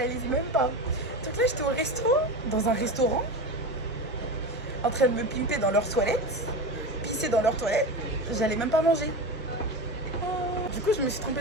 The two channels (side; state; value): both; normal; correlation 0.24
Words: même pas. Donc là, j'étais au resto, dans un restaurant, en train de me pimper dans leurs toilettes, pisser dans leurs toilettes. J'allais même pas manger. Du coup, je me suis